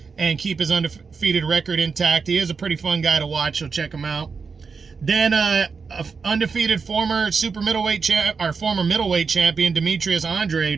and keep his undefeated record intact. He is a pretty fun guy to watch, so check him out. Then undefeated former former middleweight champion Demetrius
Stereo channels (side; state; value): left; quieter; 5.2 dB